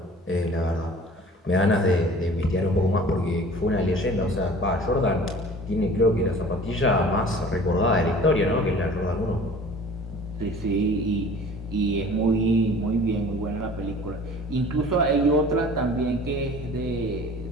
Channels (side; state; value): both; normal; correlation 0.46